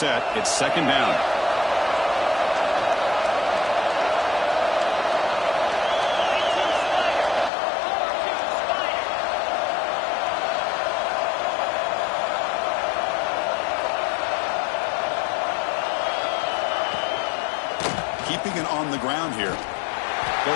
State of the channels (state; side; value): drops out; right; at 7.5 s